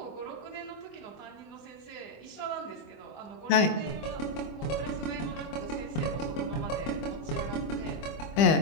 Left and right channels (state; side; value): late; right; 25 ms